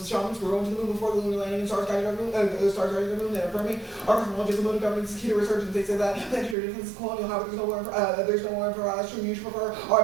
The shamans were going to the moon before the lunar landing and stars guiding the moon, and affirming our cosmology as a mode of governance is key to resurgence. They say that planetary defense is colonial. However, there's no more for us. You should prefer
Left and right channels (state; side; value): drops out; left; at 6.6 s